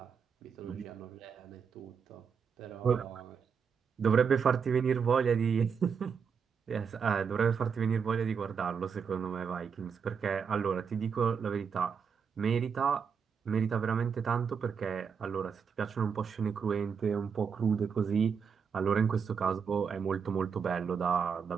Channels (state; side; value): quieter; left; 6.4 dB